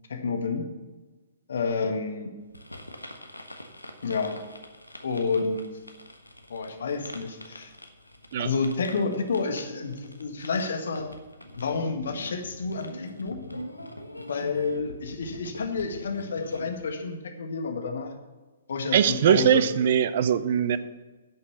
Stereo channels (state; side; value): inverted; both; correlation -0.56